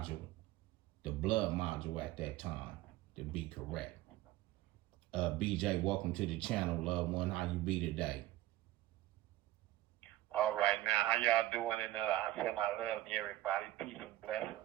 the blood module at that time, to be correct. BJ, welcome to the channel, loved one. How you be today? All right, now, how y'all doing? And I send my love to everybody. Peace and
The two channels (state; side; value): quieter; left; 15.7 dB